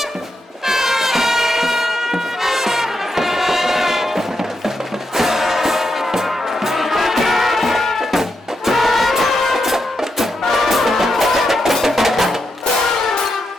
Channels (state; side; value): normal; both; correlation 0.84